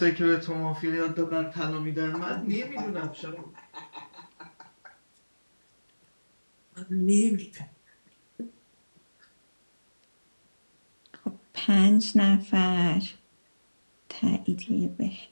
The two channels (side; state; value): both; inverted; correlation -1.00